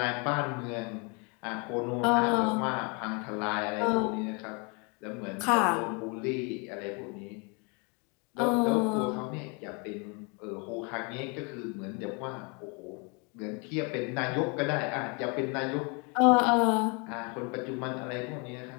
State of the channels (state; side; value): quieter; right; 32.8 dB